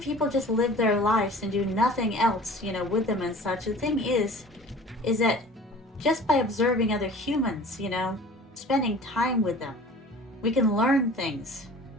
people just live their lives and do nothing else, with them and such, the thing is that just by observing other humans, spending time with them, we can learn things.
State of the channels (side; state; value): both; normal; correlation 0.44